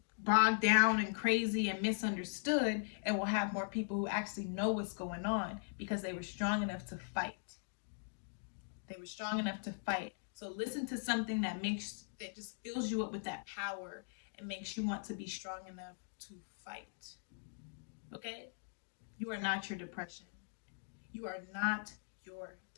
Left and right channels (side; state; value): right; silent; digital silence